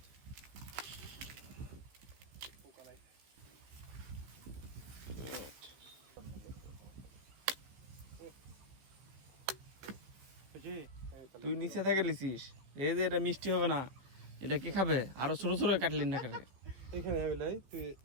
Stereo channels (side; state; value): left; late; 15 ms